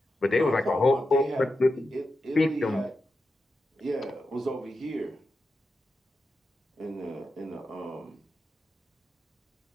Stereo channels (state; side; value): normal; both; correlation 0.89